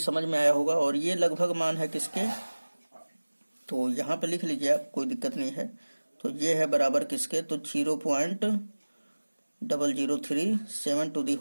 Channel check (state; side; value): inverted; both; correlation -1.00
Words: में आया होगा, और ये लगभग मान है किसके, तो यहाँ पे लिख लीजिए आप, कोई दिक्कत नहीं है। तो ये है बराबर किसके, तो 0.0037 to the